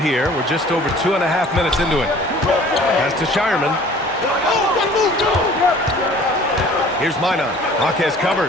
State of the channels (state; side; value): normal; both; correlation 0.49